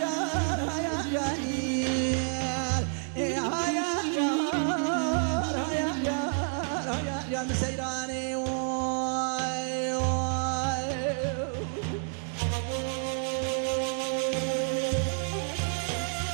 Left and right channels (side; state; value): left; silent; 56 dB below the other